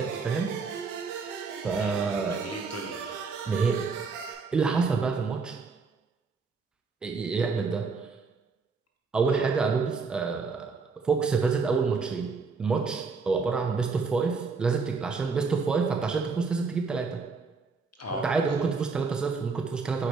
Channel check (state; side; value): quieter; left; 4.7 dB